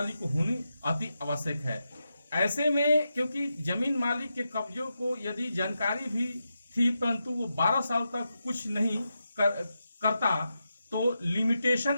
को होनी अति आवश्यक है। ऐसे में क्योंकि जमीन मालिक के कब्जों को यदि जानकारी भी थी परंतु वो 12 साल तक कुछ नहीं करता, तो लिमिटेशन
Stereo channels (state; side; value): inverted; both; correlation -0.88